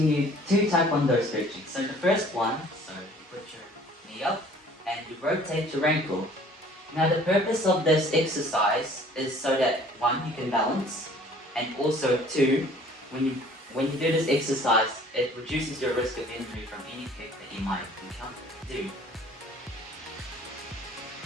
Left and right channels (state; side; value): normal; both; correlation 0.53